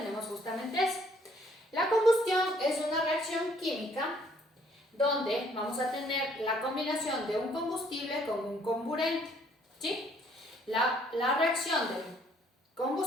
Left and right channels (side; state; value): both; normal; correlation 0.63